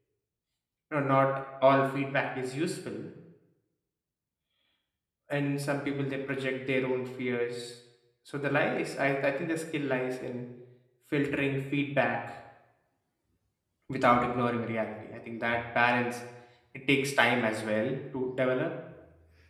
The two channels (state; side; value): identical; both; correlation 1.00